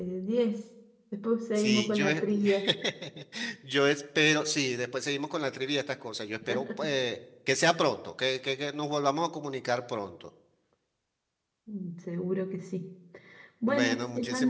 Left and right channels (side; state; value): both; identical; correlation 1.00